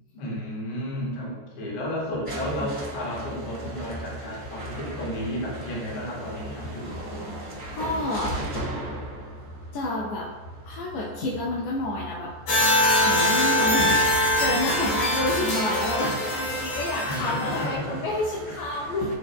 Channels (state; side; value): late; right; 14 ms